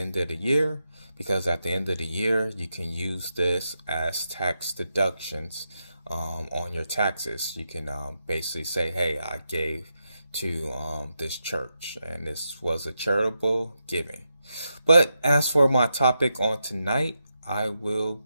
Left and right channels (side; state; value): both; inverted; correlation -0.86